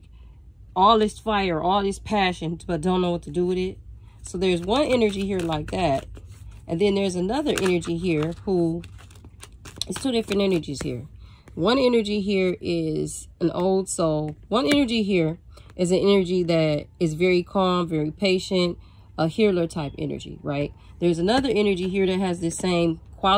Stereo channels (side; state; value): both; identical; correlation 1.00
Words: all this fire, all this passion, but don't know what to do with it. So there's one energy here like that. And then there's another energy here who, it's two different energies here. One energy here is an old soul. One energy here is an energy that is very calm, very patient, a healer type energy, right? There's another energy here that has the same